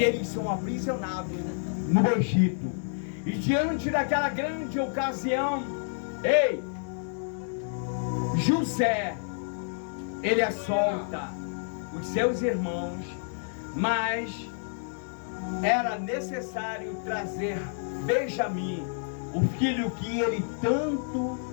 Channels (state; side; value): silent; right; 59 dB below the other